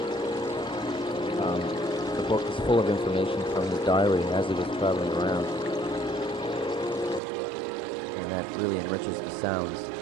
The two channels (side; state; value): left; drops out; at 7.2 s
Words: The book is full of information from his diary as he was traveling around, and that really enriches the sounds.